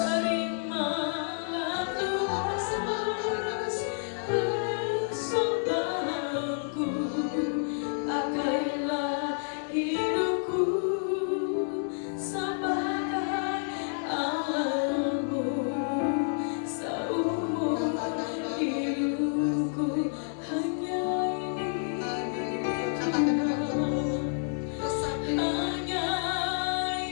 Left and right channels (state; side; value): silent; right; digital silence